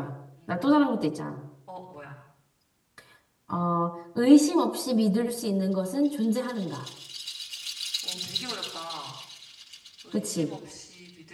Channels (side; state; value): both; identical; correlation 1.00